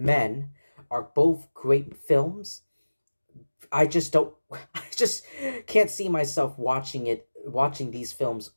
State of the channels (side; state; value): both; inverted; correlation -1.00